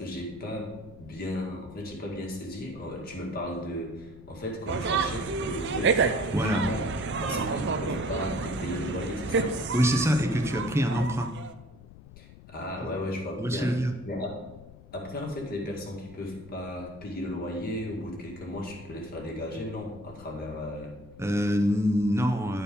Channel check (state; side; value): noise; left; rumble, 18 dB below the sound